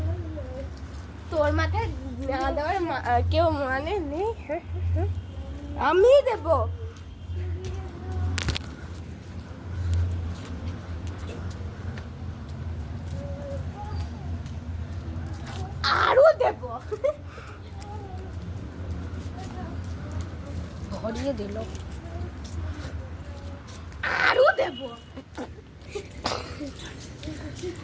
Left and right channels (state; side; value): identical; both; correlation 1.00